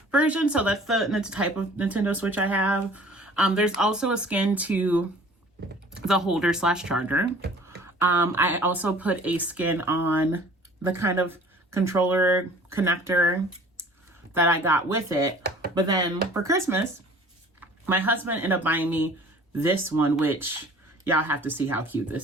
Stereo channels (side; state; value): both; normal; correlation 0.50